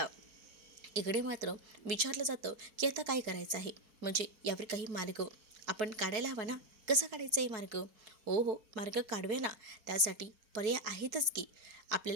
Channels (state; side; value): late; left; 4.7 ms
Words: इकडे मात्र विचारलं जातं की आता काय करायचं आहे, म्हणजे यावर काही मार्ग आपण काढायला हवा ना. कसा काढायचा आहे मार्ग? हो, मार्ग काढूया ना. त्यासाठी पर्याय आहेतच की,